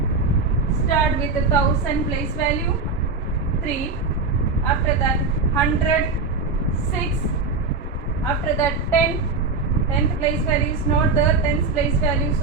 Start with the 1000 place value, 3. After that 100, 6. After that 10, 10th place value is not there, 10th place value,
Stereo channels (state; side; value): quieter; left; 4.2 dB